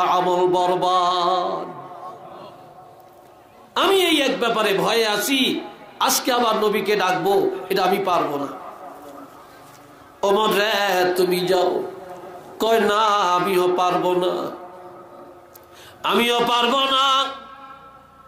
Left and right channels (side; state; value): both; identical; correlation 1.00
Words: আমল বরবাদ। আমি এই এক ব্যাপারে ভয়ে আছি, আজকে আবার নবীকে ডাকবো, এটা আমি পারবো না। ওমর রে তুমি যাও। কয় না আমিও পারবো না, আমিও পারবো না,